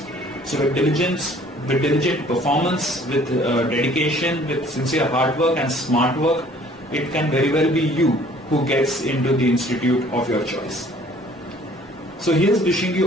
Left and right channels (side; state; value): both; normal; correlation 0.55